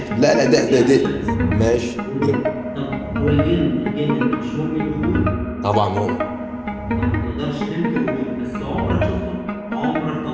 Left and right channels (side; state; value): both; identical; correlation 1.00